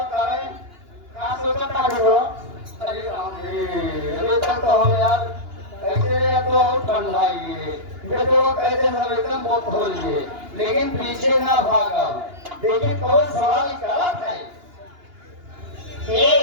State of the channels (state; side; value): late; left; 2.9 ms